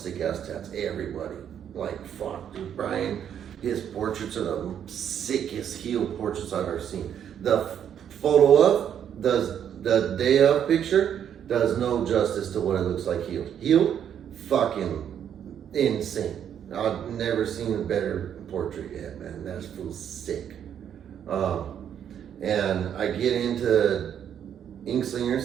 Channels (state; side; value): quieter; left; 9.1 dB